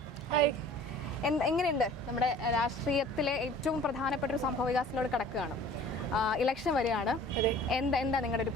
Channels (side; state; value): both; normal; correlation 0.47